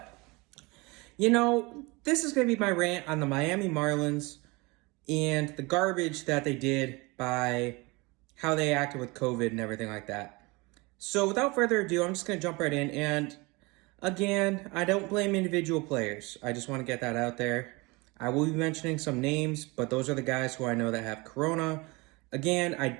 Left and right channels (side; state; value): left; quieter; 25.4 dB